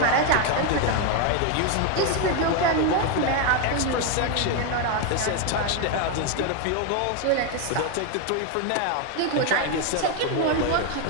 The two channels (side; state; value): both; different; correlation 0.01